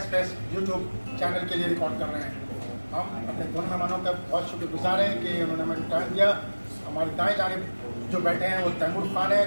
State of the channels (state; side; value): inverted; both; correlation -1.00